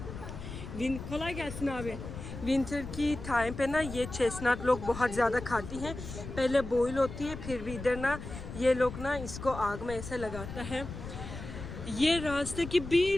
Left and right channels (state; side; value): noise; left; rumble, 10 dB below the sound